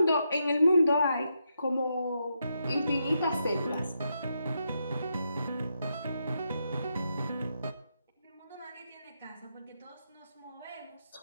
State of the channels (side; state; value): both; inverted; correlation -0.82